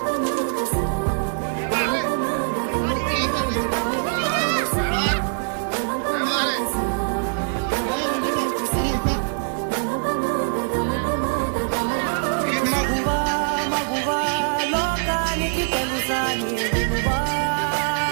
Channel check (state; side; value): silent; left; digital silence